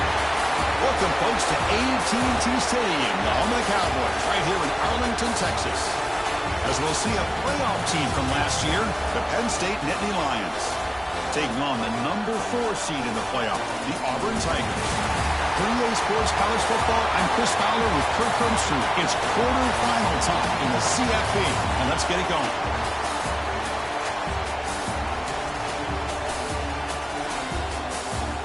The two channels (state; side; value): identical; both; correlation 1.00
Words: Welcome, folks, to AT&T Stadium, the home of the Cowboys, right here in Arlington, Texas. As we'll see a playoff team from last year, the Penn State Nittany Lions, taking on the number 4 seed in the playoff, the Auburn Tigers. 3A Sports College Football, I'm Chris Fowler with Kirk Crumpster. It's quarterfinal time in the CFP, and let's get it going.